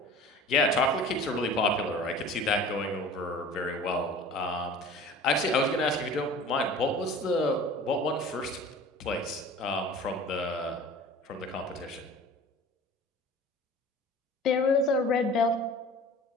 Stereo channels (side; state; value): both; normal; correlation 0.43